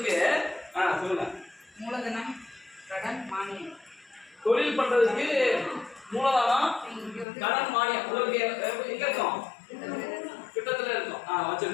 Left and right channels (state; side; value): drops out; right; at 7.2 s